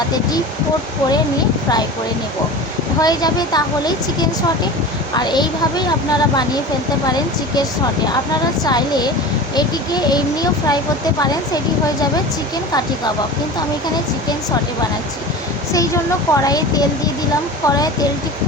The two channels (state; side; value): normal; both; correlation 0.33